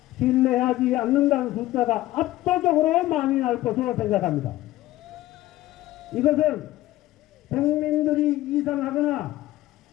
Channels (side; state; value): right; quieter; 16.0 dB